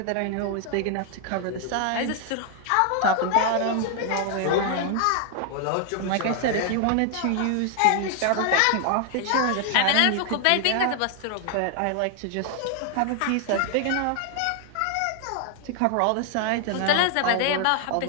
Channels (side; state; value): both; different; correlation 0.00